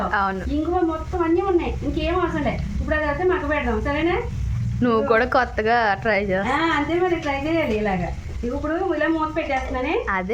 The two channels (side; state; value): both; identical; correlation 1.00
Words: అవును. ఇంగువ మొత్తం అన్నీ ఉన్నాయి, ఇంకేం అవసరం లేదు. ఇప్పుడు అది అయితే మగ్గ పెడదాం. సరేనా? నువ్వు కూడా కొత్తగా ట్రై చేస్తా. అంతే మరి, ట్రై చేయాలి ఇలాగా. ఇప్పుడు ఇలా మూత పెట్టేస్తున్నానే.